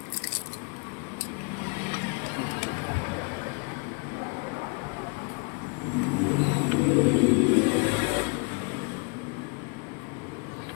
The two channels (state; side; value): quieter; right; 33.0 dB